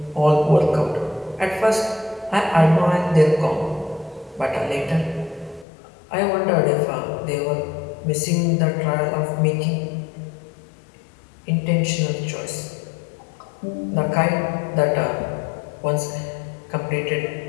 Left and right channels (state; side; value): drops out; right; at 5.7 s